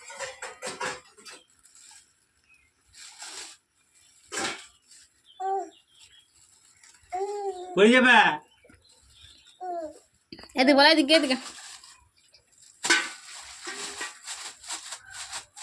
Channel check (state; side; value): identical; both; correlation 1.00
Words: পড়ে যাবে। এদিকে বলা, এদিকে এদিকে।